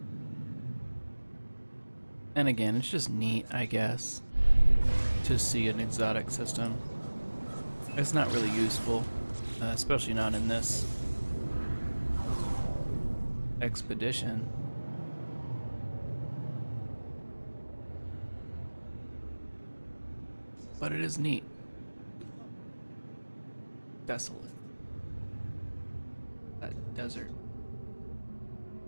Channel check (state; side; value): inverted; both; correlation -1.00